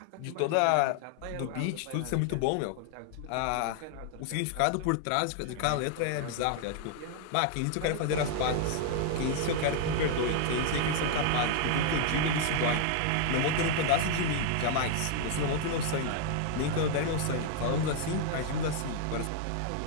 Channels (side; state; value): both; different; correlation 0.00